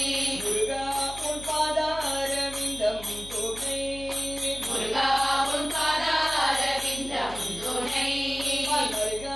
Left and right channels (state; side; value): noise; left; hum, 15 dB below the sound